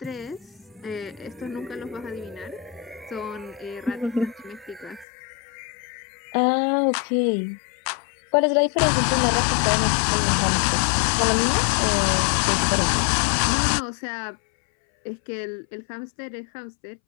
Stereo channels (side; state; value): right; drops out; at 5.1 s